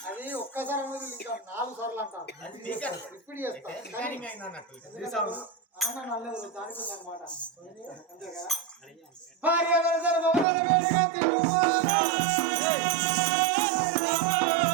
అది ఒక్కసారి అనేది ఇంకా 4 సార్లు అంటారు ఇప్పుడు చేస్తా నల్లదు దానికి అనమాట అంతే కదా భార్య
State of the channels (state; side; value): drops out; left; at 10.5 s